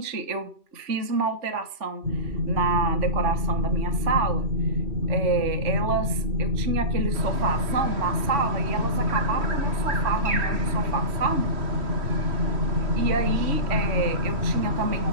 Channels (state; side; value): late; left; 3.5 ms